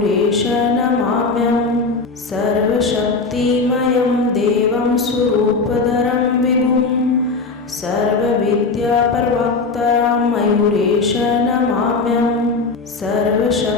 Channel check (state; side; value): quieter; right; 4.1 dB